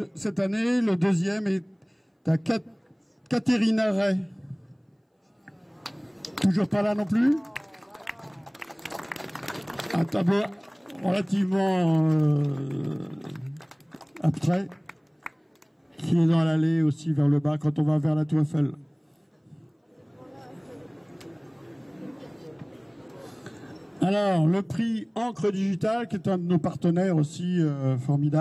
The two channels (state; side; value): identical; both; correlation 1.00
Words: Cette année, le deuxième est à Catherine Ray. Toujours pas là non plus? Un tableau. relativement abstrait, qui est dans l'allée aussi vers le bas quand on va vers la Tour Eiffel. Alors, le prix Encre Digital, qui est un de nos partenaires aussi